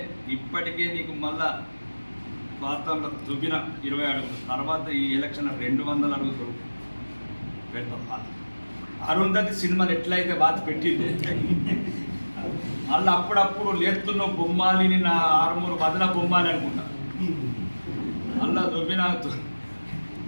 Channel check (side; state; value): both; inverted; correlation -1.00